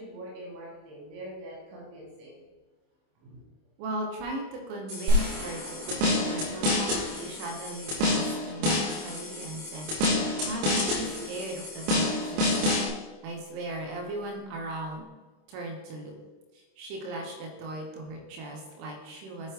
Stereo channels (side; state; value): left; late; 26 ms